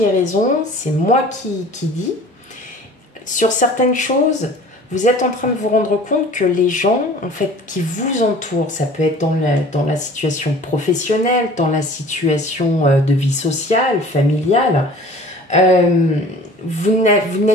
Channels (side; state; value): both; normal; correlation 0.46